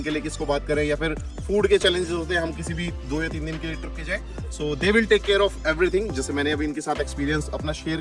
के लिए किसको बात करें या फिर फूड के चैलेंजेस होते हैं, हम किसी भी 2 या 3 दिन के लिए ट्रिप पे जाए। So they will take care of everything. जैसे मैंने अभी इनके साथ एक्सपीरियंस अपना शेयर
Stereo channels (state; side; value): identical; both; correlation 1.00